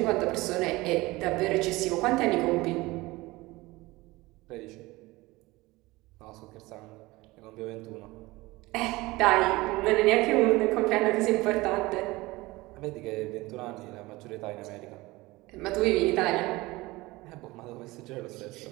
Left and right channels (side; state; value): left; quieter; 20.8 dB